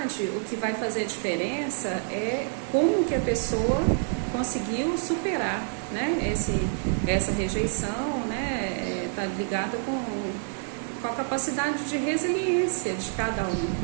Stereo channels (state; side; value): silent; left; 60 dB below the other